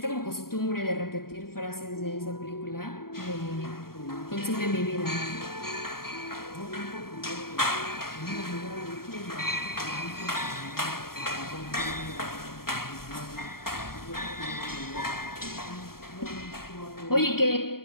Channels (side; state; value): right; late; 0.93 ms